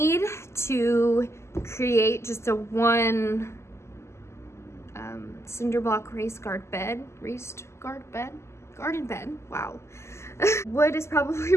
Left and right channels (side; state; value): right; late; 0.13 ms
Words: to create just a one cinder block garden bed. Wow. Wood is probably